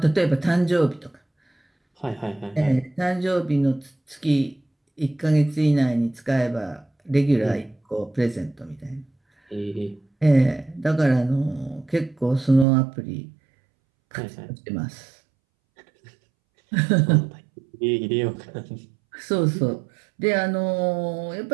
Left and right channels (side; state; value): left; drops out; at 12.7 s